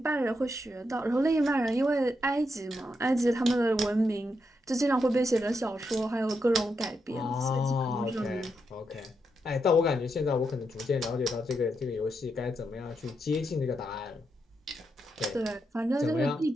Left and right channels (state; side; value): normal; both; correlation 0.83